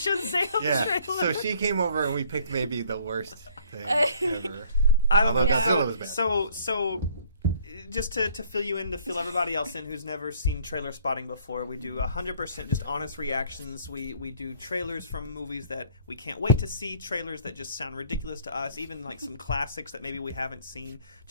trailer. So she came over and we picked maybe the worst thing ever. I don't know. Godzilla was bad. So just to fill you in, to fill everybody else in who's never seen Trailerspotting before, we do 100% just honest reactions. We do trailers from movies that we can't wait to see, trailers that just sound ridiculous to us, even like some classics that maybe we haven't seen,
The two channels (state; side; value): inverted; both; correlation -0.58